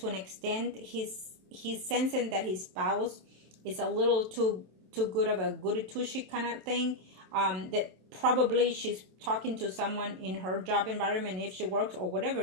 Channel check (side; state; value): left; late; 27 ms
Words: an extent he's sensing that his spouse is a little too good of a goody two-shoe kind of thing. That probably she's talking to someone in her job environment, if she works, or whatever